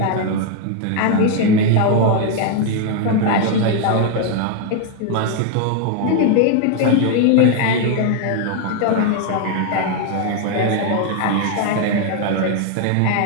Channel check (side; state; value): both; different; correlation 0.01